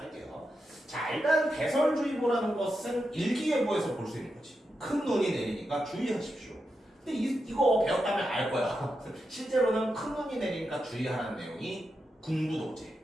자, 일단 배설주의보라는 것은 일기예보에서 볼 수 있는 거지. 큰 눈이 내리니까 주의하십시오. 근데 이거 배웠다면 알 거야. 실제로는 큰 눈이 내리니까 주의하라는 내용이 군부독재.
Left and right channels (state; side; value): normal; both; correlation 0.87